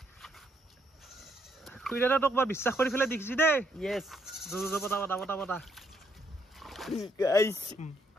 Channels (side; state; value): both; normal; correlation 0.72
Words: খুইৰাটা তোক বিশ্বাস কৰি ফেলে দেখিছি দে ইয়েস পটা পটা পটা পটা গাইস